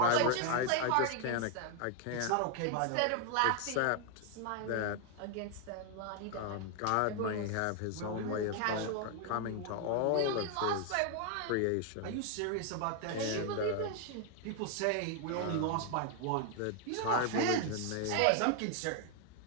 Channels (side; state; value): both; different; correlation 0.00